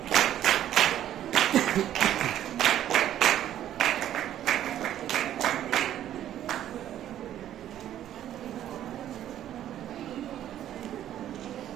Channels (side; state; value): left; quieter; 11.6 dB